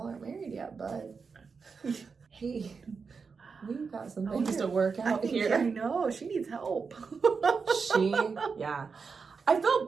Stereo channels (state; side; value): quieter; left; 5.2 dB